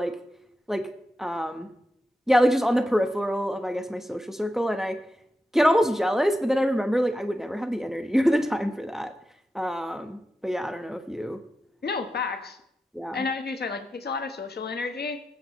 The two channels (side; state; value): both; normal; correlation 0.90